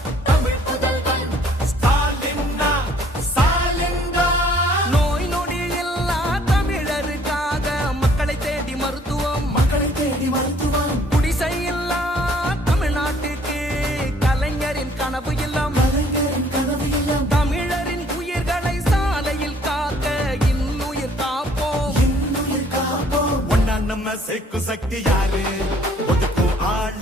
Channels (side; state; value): both; normal; correlation 0.60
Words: தமிழ் புதல்வன் ஸ்டாலின் நோய் நொடி இல்லா தமிழருக்காக மக்களை தேடி மருத்துவம் குடிசை இல்லா தமிழ்நாட்டுக்கு கலைஞரின் கனவு இல்லம் தமிழரின் உயிர்களை சாலையில் காக்க இன்னுயிர் காப்போம் ஒன்னா நம்ம சேர்க்கும் சக்தி யாரு ஒதுக்கும் ஆள